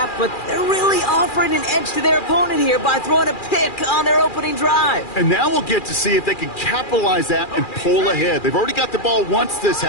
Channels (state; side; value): late; right; 2.4 ms